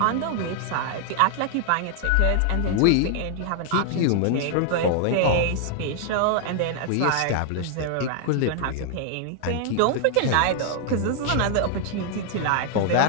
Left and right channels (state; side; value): different; both; correlation 0.00